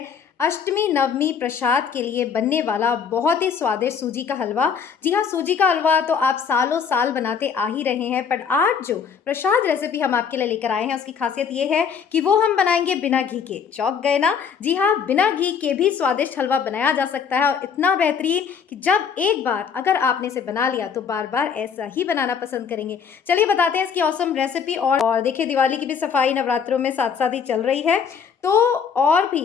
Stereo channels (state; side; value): quieter; right; 6.7 dB